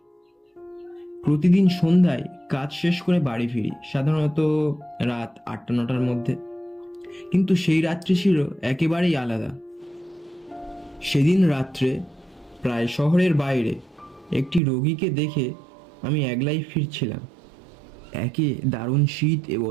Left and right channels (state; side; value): drops out; left; at 14.6 s